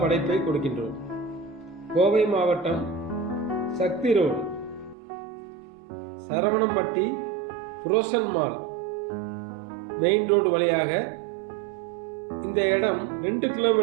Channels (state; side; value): drops out; left; at 5.0 s